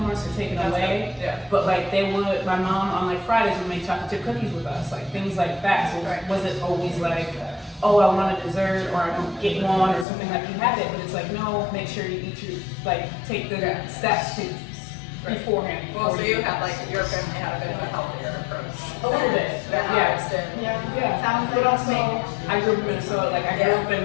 us or taken away. Yeah. But like they would, my mom on like Fridays would make chocolate chip cookies with us, like things like that. So it wasn't always like, oh, I want a dessert or I don't get one or something, like you had it, but it's like, no, make sure you eat your, like, take the steps to beforehand. Well, so you had like, your family had a bit of a healthier approach. A little bit, Yeah. yeah. Sounds But like also, I grew up in Minnesota, like I grew up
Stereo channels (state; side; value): drops out; right; at 10.1 s